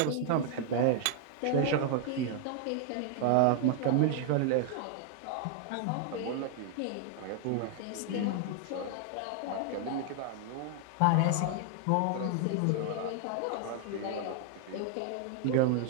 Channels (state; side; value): different; both; correlation 0.00